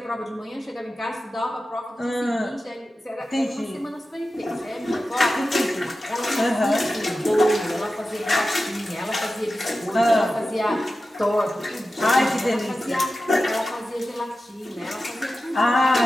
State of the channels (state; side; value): normal; both; correlation 0.93